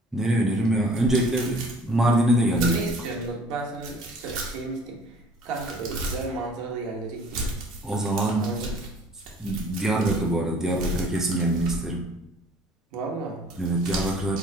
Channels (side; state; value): both; normal; correlation 0.53